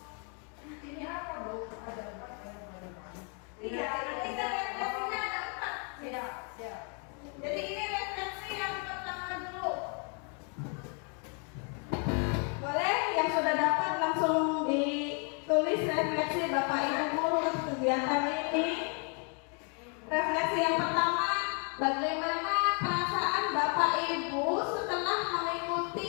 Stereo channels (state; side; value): quieter; right; 38.4 dB